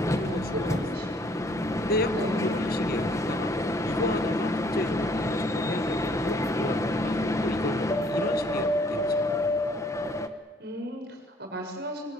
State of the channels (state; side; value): normal; both; correlation 0.61